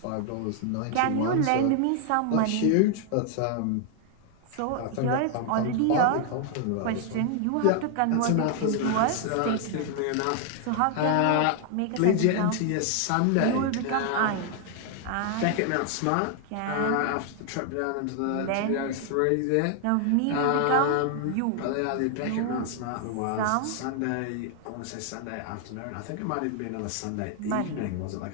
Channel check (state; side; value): different; both; correlation 0.00